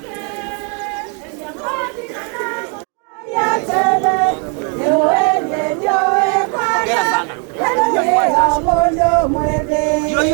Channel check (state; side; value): quieter; left; 37.6 dB